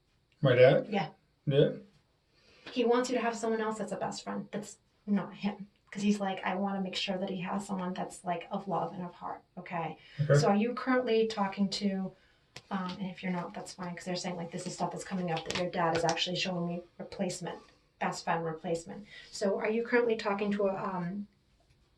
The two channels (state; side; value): identical; both; correlation 1.00